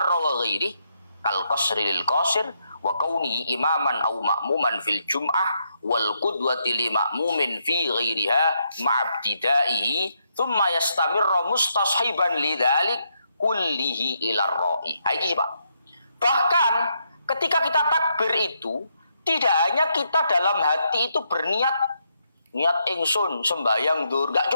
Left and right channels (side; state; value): both; inverted; correlation -0.78